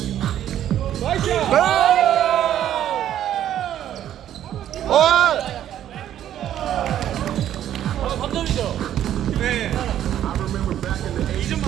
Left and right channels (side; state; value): left; quieter; 11.2 dB